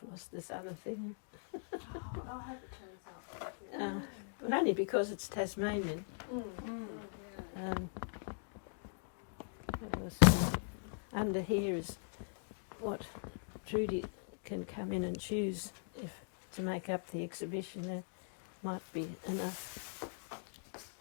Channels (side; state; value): right; silent; digital silence